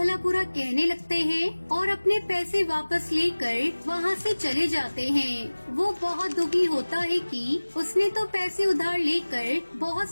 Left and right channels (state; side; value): inverted; both; correlation -1.00